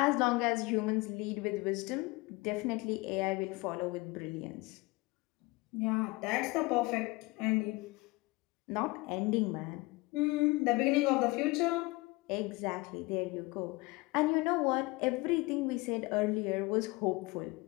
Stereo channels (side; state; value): right; quieter; 23.6 dB